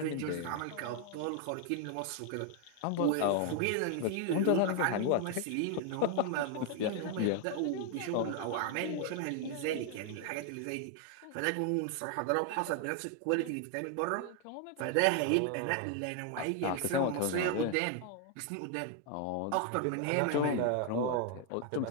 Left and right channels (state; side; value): different; both; correlation 0.00